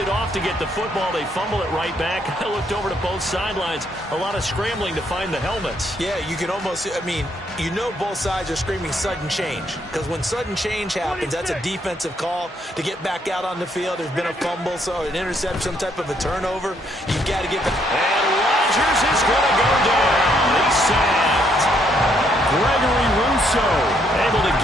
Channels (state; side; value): normal; both; correlation 0.71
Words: off to get the football. They fumble it right back. I looked over to both sidelines. A lot of scrambling to find the helmets. Yeah, you can almost, you know both sides are screaming sudden change. Because when sudden change happens, that's a defensive call to get back out on the field. There's been a fumble, so an interception, some type of a turnover. You've got to get back. And Rodgers is going to go down. He's sacked. Gregory Rousseau Able to